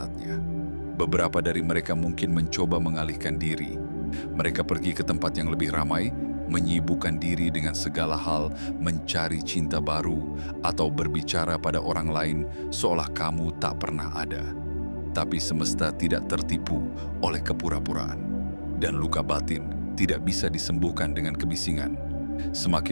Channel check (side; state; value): both; inverted; correlation -1.00